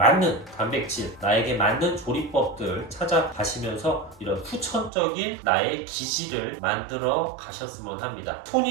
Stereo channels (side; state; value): left; drops out; at 4.9 s